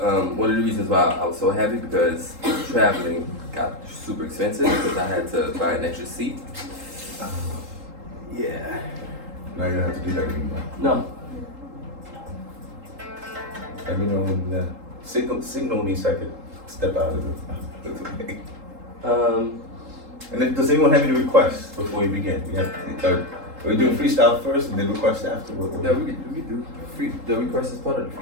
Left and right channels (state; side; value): late; left; 3.8 ms